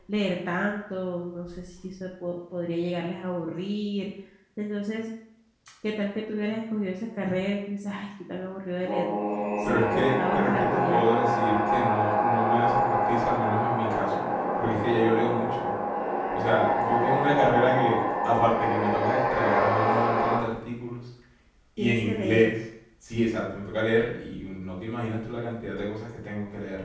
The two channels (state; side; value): identical; both; correlation 1.00